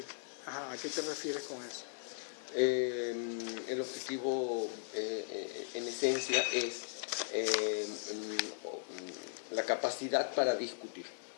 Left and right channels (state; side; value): silent; right; 53 dB below the other